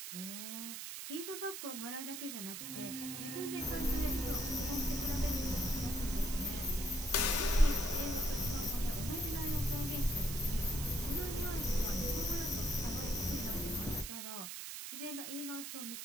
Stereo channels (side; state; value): right; noise; hiss, 7 dB below the sound